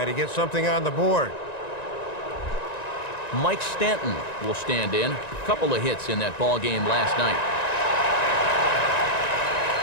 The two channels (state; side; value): late; right; 1.9 ms